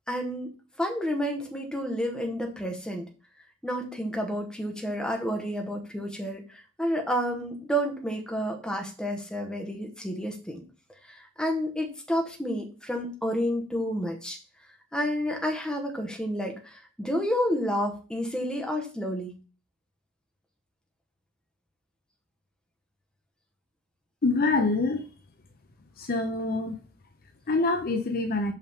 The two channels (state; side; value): normal; both; correlation 0.60